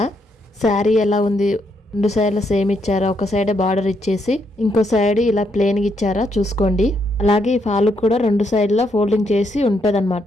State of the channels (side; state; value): both; normal; correlation 0.76